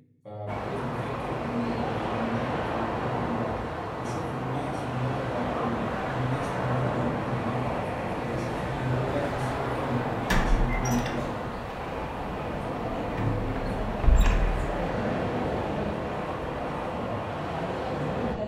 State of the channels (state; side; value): identical; both; correlation 1.00